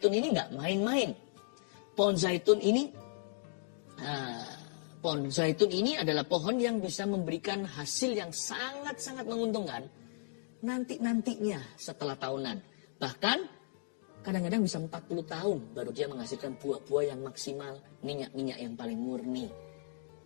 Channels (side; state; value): right; silent; digital silence